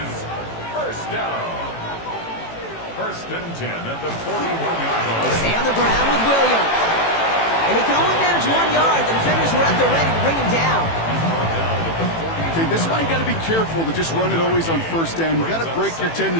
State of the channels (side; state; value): right; late; 18 ms